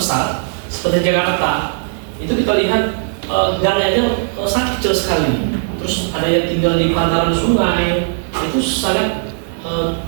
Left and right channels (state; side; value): silent; left; 67 dB below the other